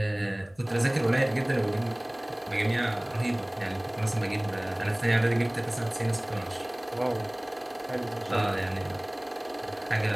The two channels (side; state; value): left; noise; hum, 29 dB below the sound